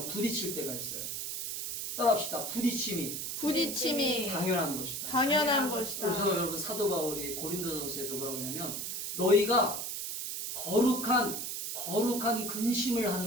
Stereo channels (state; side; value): noise; right; hiss, 4 dB below the sound